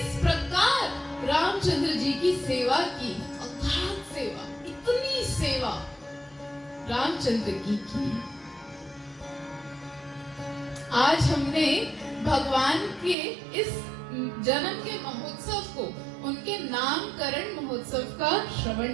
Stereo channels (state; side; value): drops out; left; at 13.2 s